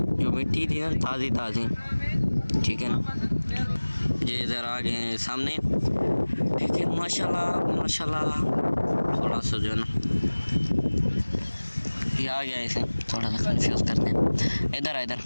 जो मिट्टी थी ना ताज़ी ताज़ी, ठीक है ना। ये इधर आ गए हैं सामने, ठीक है। माशाल्लाह माशाल्लाह। थोड़ा सा जो है ना ये आ गया, इसे थोड़ा सा कंफ्यूज करते हैं। इधर इधर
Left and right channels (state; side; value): inverted; both; correlation -1.00